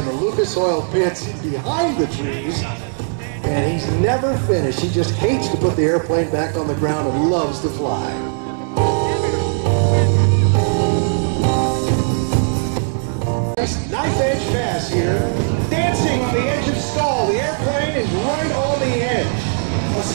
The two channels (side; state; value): left; silent; digital silence